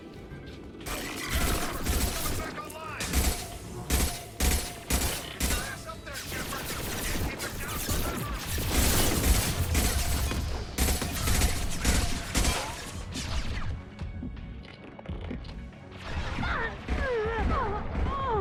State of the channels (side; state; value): both; identical; correlation 1.00